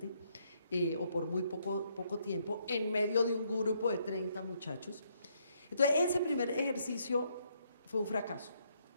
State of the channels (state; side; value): inverted; both; correlation -0.72